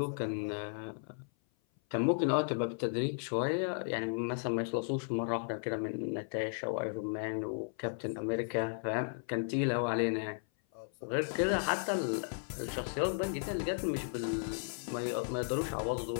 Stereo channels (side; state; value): right; silent; 54 dB below the other